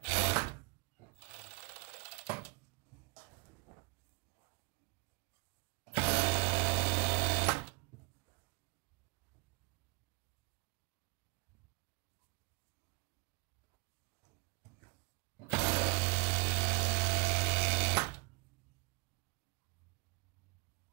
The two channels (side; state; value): left; quieter; 27.9 dB